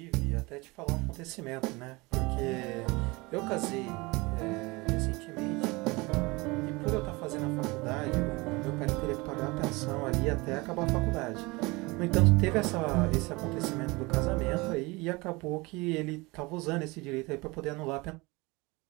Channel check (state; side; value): quieter; left; 24.4 dB